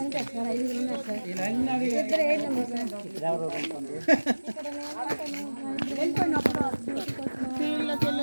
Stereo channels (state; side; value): inverted; both; correlation -1.00